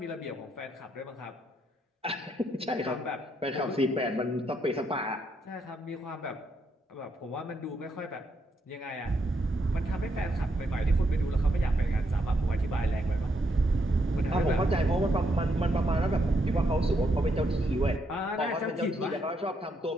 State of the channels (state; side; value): normal; both; correlation 0.77